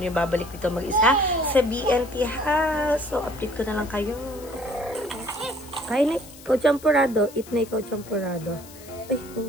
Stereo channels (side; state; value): left; noise; hiss, 19 dB below the sound